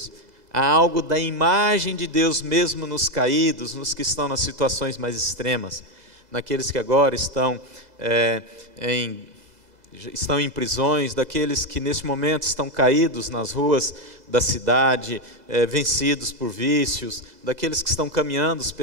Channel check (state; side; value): late; left; 2.0 ms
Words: há algo da imagem de Deus mesmo nos caídos, nos que estão nas situações mais extremas, naqueles que agora estão em prisões, daqueles que neste momento estão caídos nas ruas da cidade, vencidos por vícios, daqueles que estão caminhando